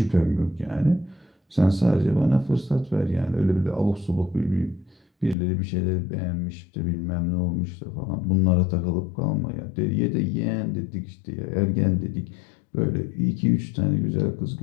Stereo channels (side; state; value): right; drops out; at 5.4 s